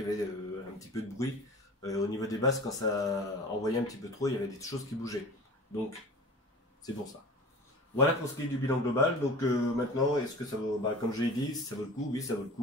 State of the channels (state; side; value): normal; both; correlation 0.39